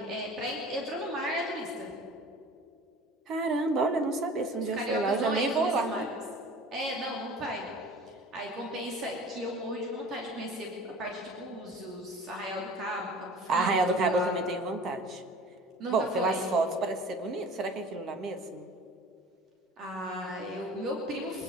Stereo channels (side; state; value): both; normal; correlation 0.43